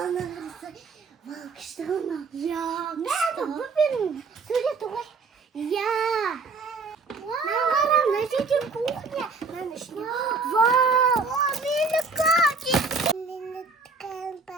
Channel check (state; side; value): quieter; left; 4.3 dB